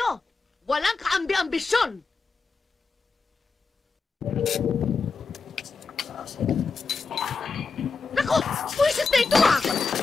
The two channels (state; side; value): quieter; right; 4.5 dB